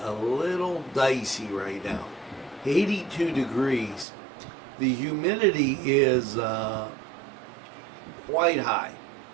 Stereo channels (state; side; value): drops out; left; at 4.0 s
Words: a little dicey right now. 82 degrees. The humidity is quite high,